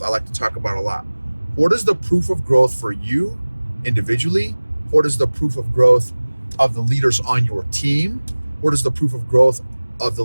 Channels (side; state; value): both; inverted; correlation -1.00